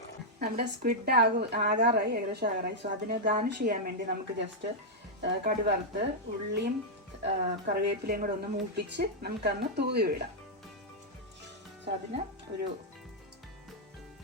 നമ്മുടെ സ്ക്വിഡ് ആകാറായി, ഏകദേശം ആകാറായി. സോ അതിന് ഗാർണിഷ് ചെയ്യാൻ വേണ്ടി നമുക്ക് ജസ്റ്റ് കടുവറുത്ത് ഉള്ളിയും കറിവേപ്പിലയും കൂടെ ഒന്ന് മൂപ്പിച്ച് നമുക്കന്ന് തൂവി വിടാം. സോ അതിന് ഒരു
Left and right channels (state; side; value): normal; both; correlation -0.05